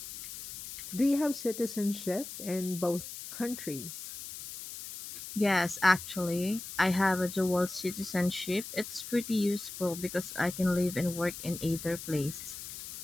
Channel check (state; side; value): noise; left; hiss, 10 dB below the sound